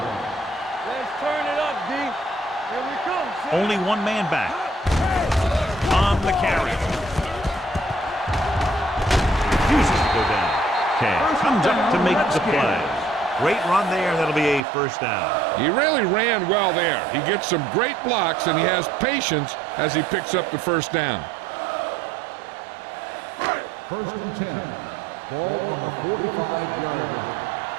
Let's turn it up, D. Here we come. Only one man back. On the carry. Refuses to go down. Cam comes up to make the play. Great run there. That'll be a first down. He really ran well there. He gets some great blocks, and he has patience as he picks up the first down. First and 10. Ball on the 45-yard line.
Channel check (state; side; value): drops out; left; at 14.6 s